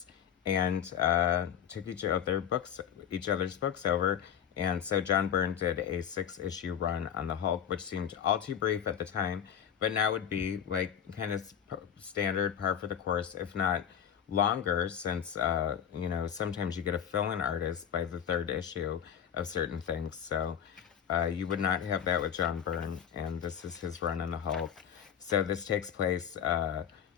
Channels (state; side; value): quieter; right; 8.8 dB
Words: and took each other's books over. And so John Byrne did a 6-issue run on the Hulk, which seemed all too brief at the time, but now would be like kind of standard, par for the course, if not longer, since sometimes you get a fill-in artist by the third issue of certain things. So you would not have that with John Byrne, and this is his run on the Hulk. So this takes place